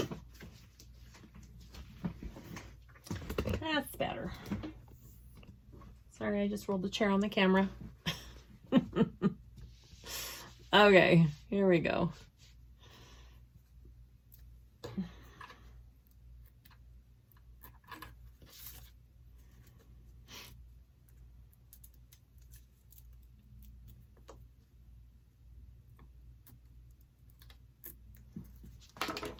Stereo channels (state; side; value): identical; both; correlation 1.00